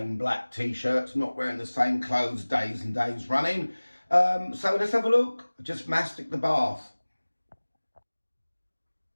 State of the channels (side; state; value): both; inverted; correlation -1.00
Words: black t-shirts, not wearing the same clothes days and days running. So let's have a look. Just mastic the bath.